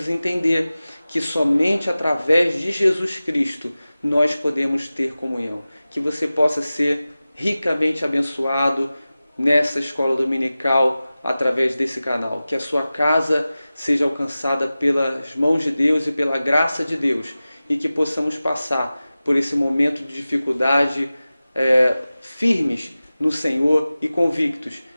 entender que somente através de Jesus Cristo nós podemos ter comunhão. Que você possa ser ricamente abençoado nessa escola dominical através desse canal. Que a sua casa seja alcançada pelas mãos de Deus e pela graça de Deus. E que possamos passar por esse momento de dificuldade firmes no Senhor e convictos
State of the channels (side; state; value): both; inverted; correlation -0.96